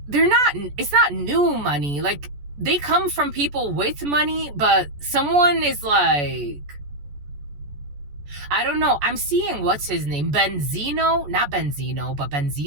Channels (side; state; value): left; late; 14 ms